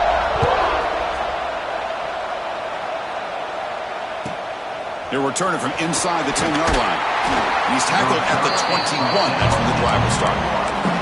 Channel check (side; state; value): both; identical; correlation 1.00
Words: They're returning from inside the 10-yard line. And he's tackled at the 21. That's when the drive will start.